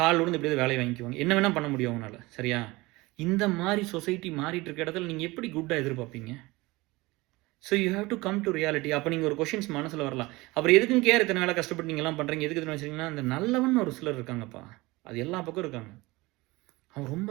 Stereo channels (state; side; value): quieter; left; 21.8 dB